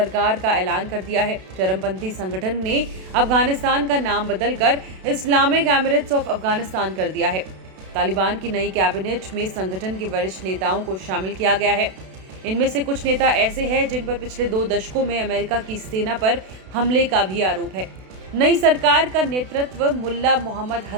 का ऐलान कर दिया है। चरमपंथी संगठन ने अफगानिस्तान का नाम बदलकर इस्लामिक एमिरेट्स ऑफ अफगानिस्तान कर दिया है। तालिबान की नई कैबिनेट में संगठन के वरिष्ठ नेताओं को शामिल किया गया है। इनमें से कुछ नेता ऐसे हैं जिन पर पिछले 2 दशकों में अमेरिका की सेना पर हमले का भी आरोप है। नई सरकार का नेतृत्व मुल्ला मोहम्मद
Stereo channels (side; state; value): left; late; 32 ms